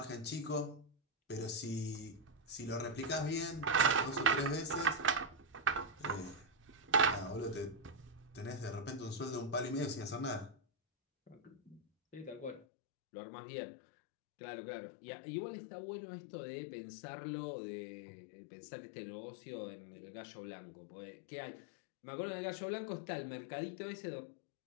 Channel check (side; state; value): right; drops out; at 12.7 s